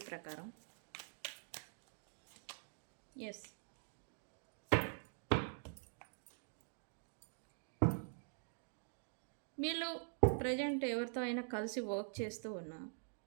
ప్రకారం. ఎస్, వీళ్ళు ప్రజెంట్ ఎవరితో అయినా కలిసి వర్క్ చేస్తూ ఉన్నా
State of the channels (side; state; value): left; silent; digital silence